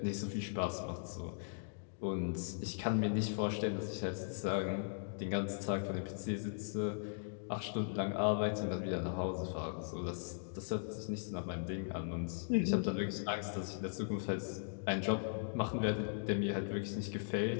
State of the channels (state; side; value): silent; right; digital silence